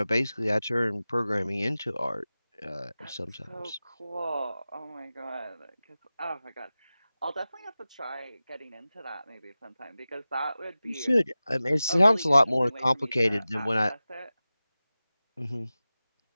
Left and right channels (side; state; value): both; inverted; correlation -0.96